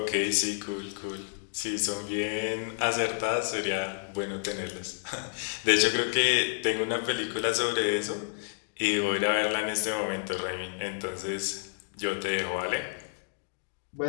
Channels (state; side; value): silent; right; digital silence